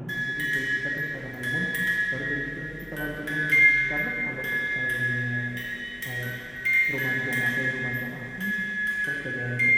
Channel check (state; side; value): noise; left; hum, 23 dB below the sound